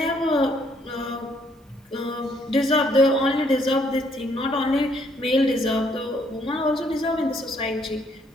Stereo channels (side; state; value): both; normal; correlation 0.68